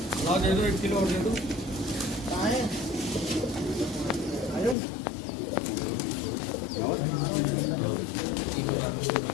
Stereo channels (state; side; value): drops out; right; at 4.8 s